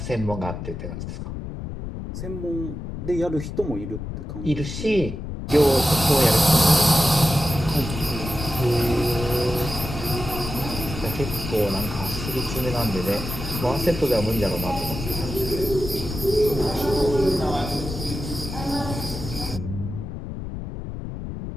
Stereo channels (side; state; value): left; noise; rumble, 7 dB below the sound